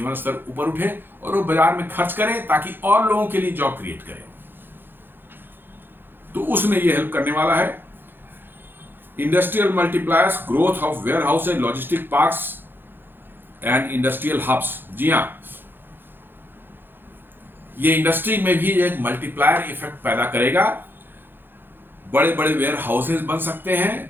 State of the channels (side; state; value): left; late; 0.099 ms